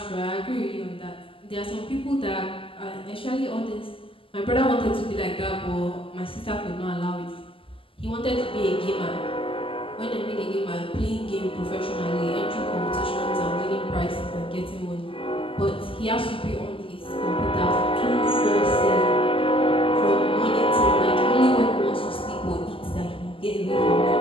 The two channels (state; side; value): late; right; 0.26 ms